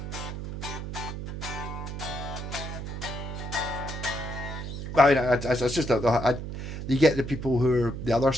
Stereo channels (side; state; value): right; noise; hum, 7 dB below the sound